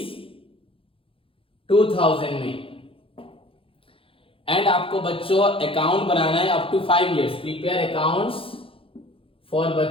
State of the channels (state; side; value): late; right; 0.26 ms